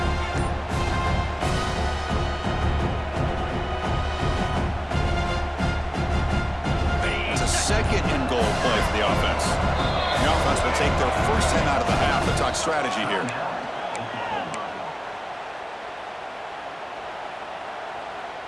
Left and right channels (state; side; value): identical; both; correlation 1.00